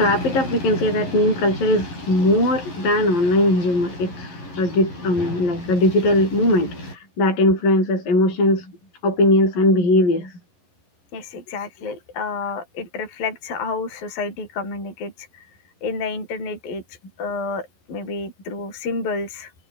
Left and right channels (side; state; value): right; late; 11 ms